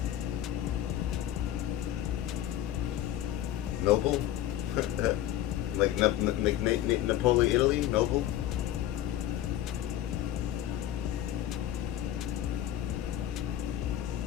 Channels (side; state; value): right; quieter; 12.3 dB